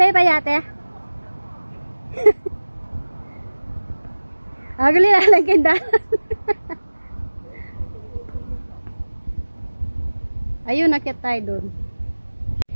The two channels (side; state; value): both; inverted; correlation -1.00